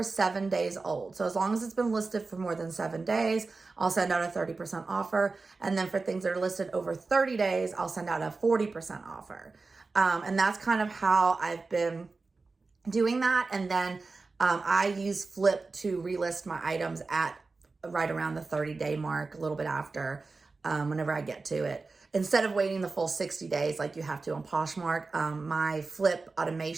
7 days old. So as long as it's been listed for more than 7 days, I'll send out a 30% offer. And then for things that are listed over 30 days, I'll send out a 40% offer. And that's kind of how I've been doing that. And then I use FLYP to relist my items at right around the 30-day mark, a little bit after, whenever I get to it. Instead of waiting the full 60 days like you have to on Poshmark, my FLYP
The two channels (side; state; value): left; quieter; 3.9 dB